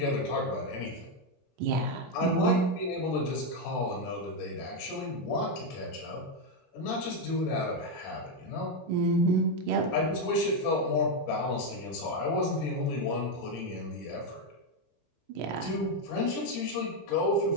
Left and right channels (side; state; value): both; normal; correlation 0.04